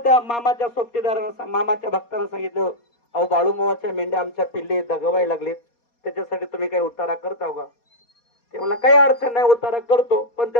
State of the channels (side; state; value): right; late; 4.2 ms